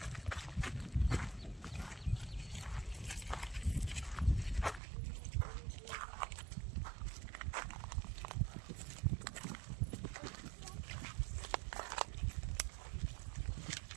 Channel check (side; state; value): left; drops out; at 4.8 s